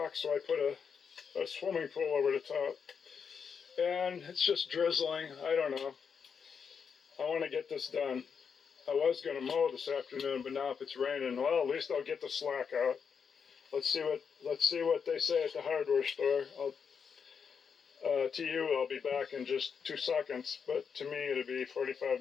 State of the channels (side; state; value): right; quieter; 6.5 dB